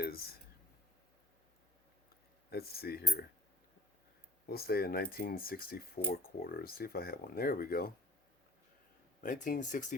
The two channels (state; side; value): normal; both; correlation 0.49